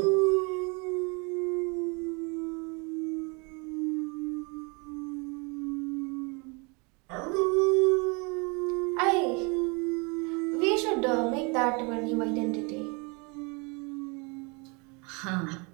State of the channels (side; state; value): left; quieter; 30.8 dB